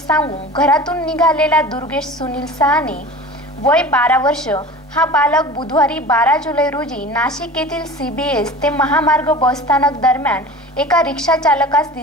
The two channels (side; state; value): both; normal; correlation 0.37